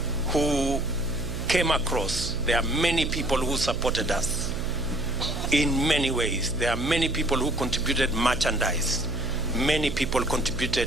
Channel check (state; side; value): noise; right; hum, 6 dB below the sound